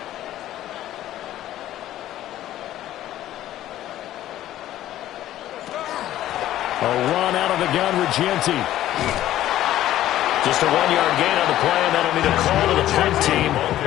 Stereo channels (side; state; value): right; quieter; 13.4 dB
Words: A run out of the gun, Regenti. Just a 1-yard gain on the play, and that'll be the call to the punt team